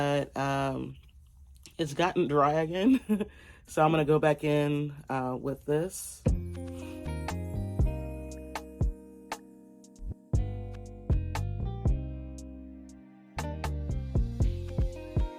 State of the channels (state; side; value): identical; both; correlation 1.00